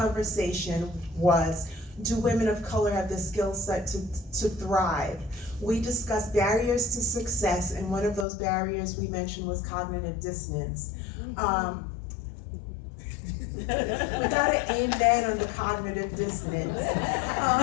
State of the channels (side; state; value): right; drops out; at 8.2 s